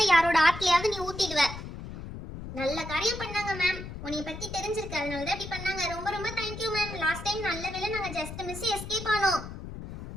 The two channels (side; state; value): left; noise; rumble, 10 dB below the sound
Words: யாரோட ஆட்லயாவது நீ ஊத்திடுவ. நல்ல காரியம் பண்ணாங்க மேம். உன்னை பத்தி தெரிஞ்சிருக்கு, அதனால தான் இப்படி பண்ணாங்க. ரொம்ப ரொம்ப தேங்க்யூ மேம். லாஸ்ட் டைம் நல்ல வேளை நாங்க ஜஸ்ட் மிஸ் எஸ்கேப் ஆனோம்.